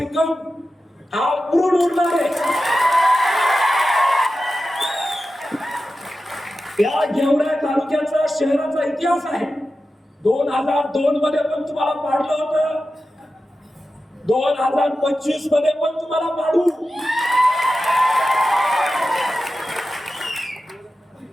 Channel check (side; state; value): both; normal; correlation 0.93